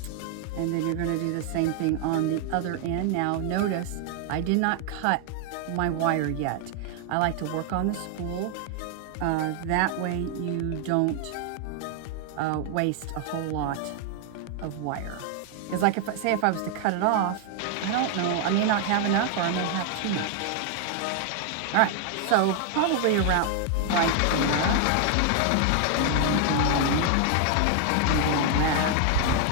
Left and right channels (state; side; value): different; both; correlation 0.00